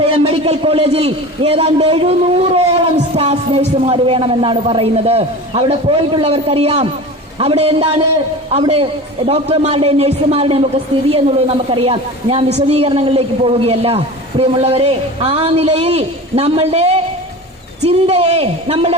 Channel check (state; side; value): normal; both; correlation 0.33